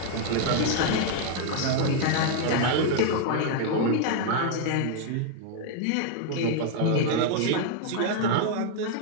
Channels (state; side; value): different; both; correlation 0.00